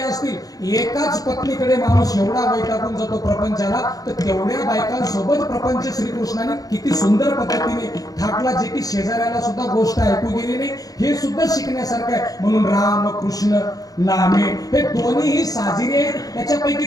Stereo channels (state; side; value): late; right; 0.18 ms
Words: असतील, एकाच पत्नीकडे माणूस एवढा वैतागून जातो प्रपंचाला, तर तेवढ्या बायकांसोबत प्रपंच श्रीकृष्णाने किती सुंदर पद्धतीने थाटला, जे की शेजाऱ्याला सुद्धा गोष्ट ऐकू गेली नाही. हे सुद्धा शिकण्यासारखं आहे. म्हणून राम कृष्ण नामे हे दोन्हीही साजिरे. त्याच्यापैकी